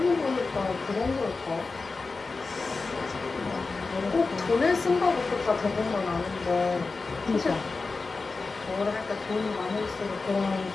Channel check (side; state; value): right; quieter; 4.0 dB